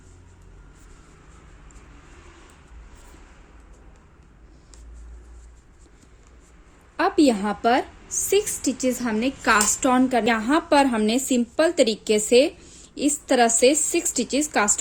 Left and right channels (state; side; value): identical; both; correlation 1.00